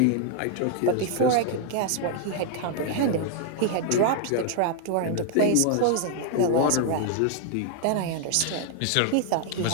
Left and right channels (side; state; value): both; different; correlation 0.00